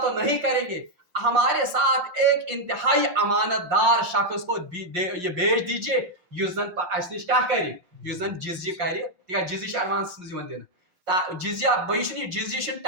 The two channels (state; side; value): late; left; 6.6 ms